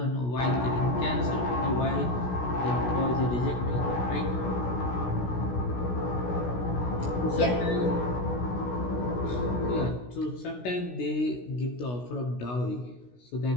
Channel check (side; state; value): right; late; 16 ms